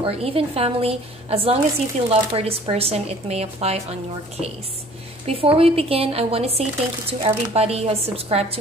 even family. As long as you feel love for this person, it may apply on your case. Before we begin, I want to say thank you to everybody who has subscribed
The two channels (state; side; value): normal; both; correlation 0.52